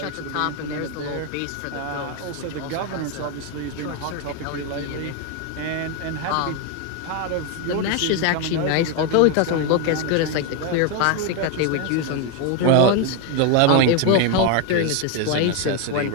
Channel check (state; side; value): different; both; correlation 0.01